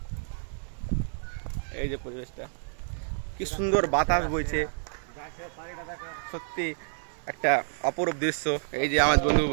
এই যে পরিবেশটা কি সুন্দর, বাতাস বইছে, সত্যি একটা অপরূপ দৃশ্য। এই যে আমার বন্ধু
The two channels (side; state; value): left; silent; 58 dB below the other